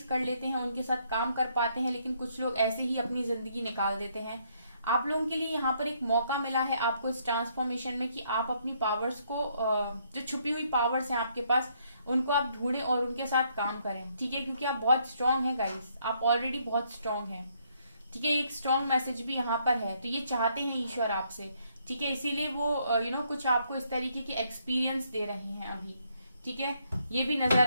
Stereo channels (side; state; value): both; inverted; correlation -0.71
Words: कर लेते हैं, उनके साथ काम कर पाते हैं, लेकिन कुछ लोग ऐसे ही अपनी जिंदगी निकाल देते हैं। आप लोगों के लिए यहाँ पर एक मौका मिला है आपको इस ट्रांसफॉर्मेशन में कि आप अपनी पावर्स को, जो छुपी हुई पावर्स हैं आपके पास, उनको आप ढूंढें और उनके साथ काम करें। ठीक है, क्योंकि आप बहुत स्ट्रांग हैं गाइस, आप ऑलरेडी बहुत स्ट्रांग हैं। ठीक है, एक स्ट्रांग मैसेज भी यहाँ पर है, तो ये चाहते हैं ईश्वर आपसे। ठीक है, इसीलिए वो कुछ आपको इस तरीके के एक्सपीरियंस दे रहे हैं अभी। ठीक है, ये भी नजर